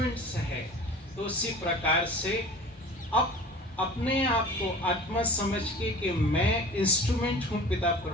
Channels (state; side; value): normal; both; correlation 0.40